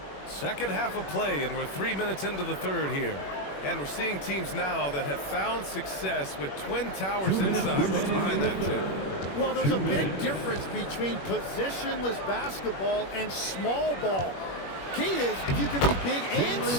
Second half of play, and we're 3 minutes into the third here. And we're seeing teams now that have found success with twin towers inside. What's behind that, Tim? well, there's a big difference between positionless basketball and small ball. Key is, if you can be big and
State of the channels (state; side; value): late; right; 21 ms